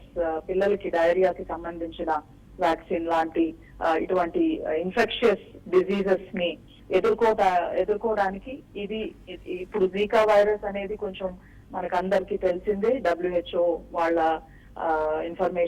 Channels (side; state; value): both; identical; correlation 1.00